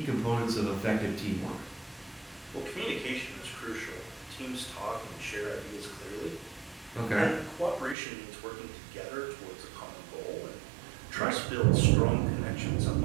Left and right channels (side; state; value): left; drops out; at 8.0 s